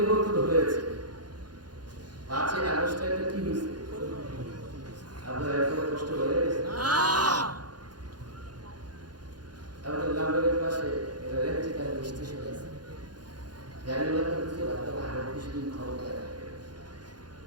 হয়েছে। 5ই আগস্টে একটা কি হয়েছে আপনারা এত কষ্ট করে গেছেন? আমাদের লাম্বারের পাশে এটা রেন্টিকার স্টেশন আছে, গাড়িওয়ালা করতে বাধ্য আরো কিছুদিন ক্ষমতায় থাকে।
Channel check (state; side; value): late; left; 0.70 ms